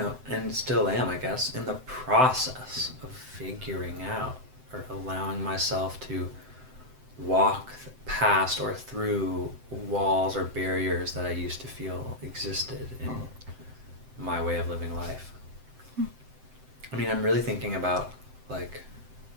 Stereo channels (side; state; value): left; late; 7.8 ms